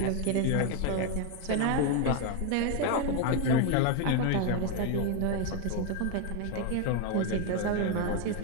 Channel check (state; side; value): different; both; correlation 0.01